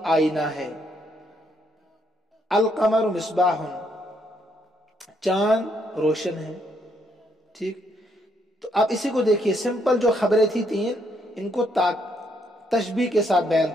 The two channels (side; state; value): both; normal; correlation 0.73